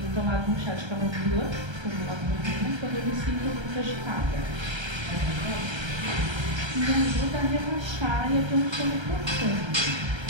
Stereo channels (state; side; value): late; left; 1.3 ms